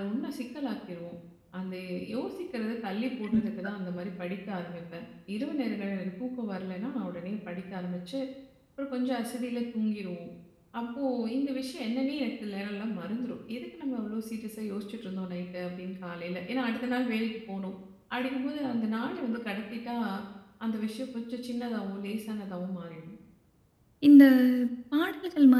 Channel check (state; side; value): identical; both; correlation 1.00